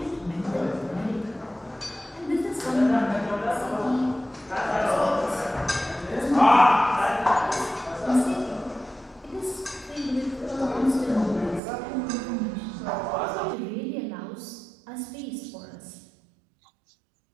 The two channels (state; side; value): drops out; left; at 11.6 s